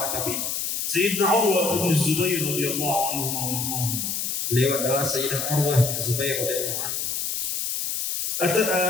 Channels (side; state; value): left; noise; hiss, 2 dB below the sound